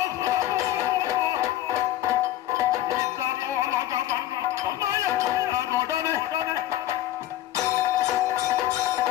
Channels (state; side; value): quieter; right; 13.6 dB